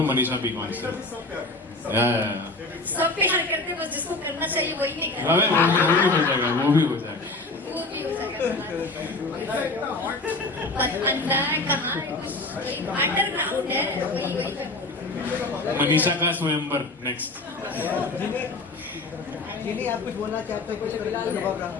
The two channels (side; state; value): right; quieter; 3.1 dB